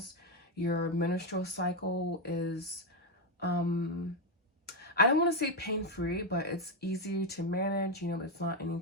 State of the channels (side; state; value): both; normal; correlation 0.06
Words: Your menstrual cycle is I don't want to say pain-free, but it's easier to manage. You know, it's not